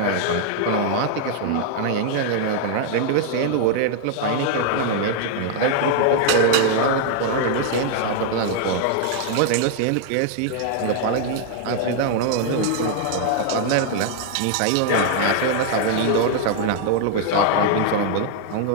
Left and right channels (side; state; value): both; different; correlation 0.00